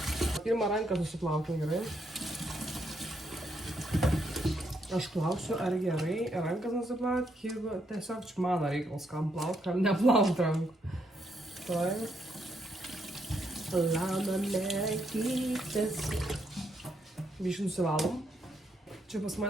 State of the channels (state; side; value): normal; both; correlation 0.76